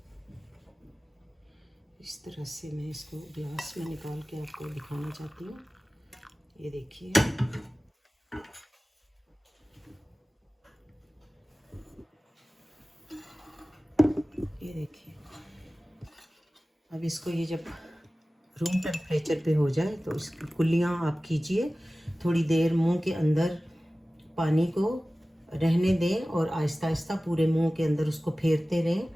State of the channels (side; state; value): both; normal; correlation 0.97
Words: इस तरह से मैं इसको ग्लास में निकाल के आपको दिखाना चाहती हूँ। ये देखिए, ये देखिए। अब इसको ये जब रूम टेम्परेचर पे हो जाए तो इसकी कुल्लियाँ आप कीजिए, थोड़ी देर मुंह के अंदर पानी को रहने दें और आहिस्ता आहिस्ता पूरे मुंह के अंदर उसको फेरते रहें।